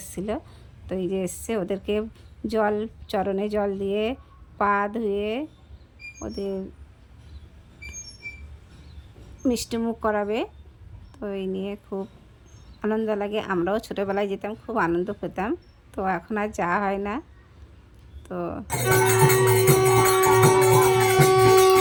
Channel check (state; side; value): identical; both; correlation 1.00